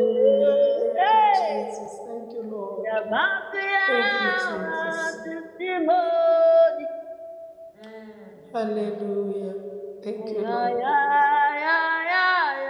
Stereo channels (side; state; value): both; identical; correlation 1.00